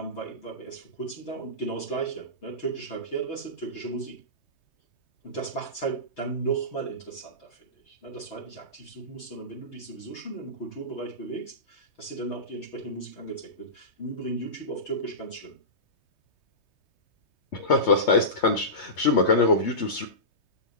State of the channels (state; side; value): late; right; 3.2 ms